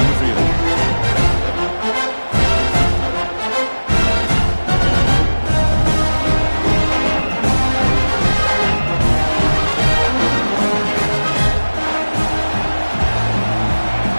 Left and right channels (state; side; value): inverted; both; correlation -1.00